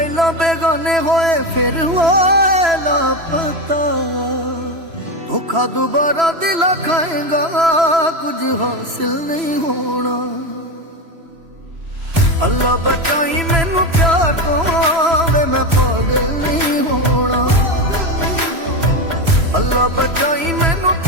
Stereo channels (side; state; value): left; late; 3.0 ms